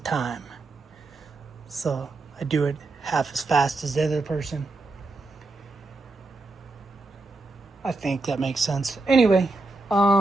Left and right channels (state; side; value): quieter; left; 3.2 dB